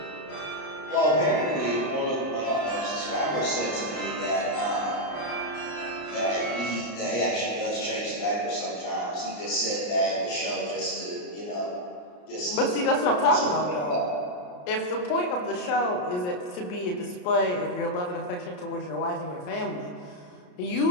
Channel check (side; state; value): right; late; 33 ms